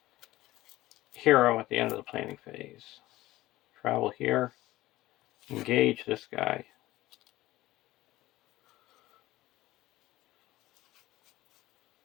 hero at the end of the planning phase. Travel here. Engage this guy.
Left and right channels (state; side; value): quieter; right; 17.2 dB